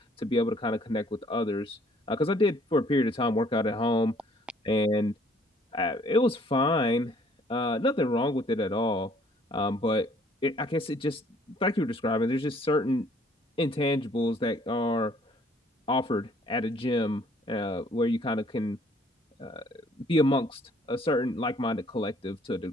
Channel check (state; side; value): normal; both; correlation 0.60